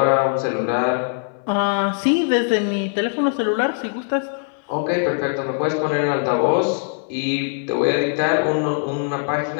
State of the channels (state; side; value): silent; right; 61 dB below the other